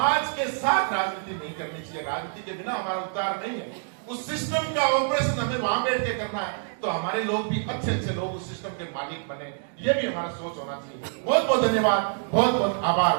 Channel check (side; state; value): left; silent; digital silence